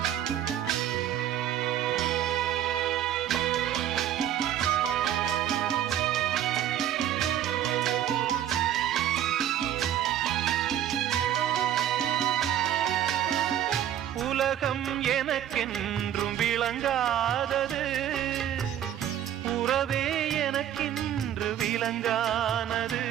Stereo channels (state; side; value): quieter; left; 11.0 dB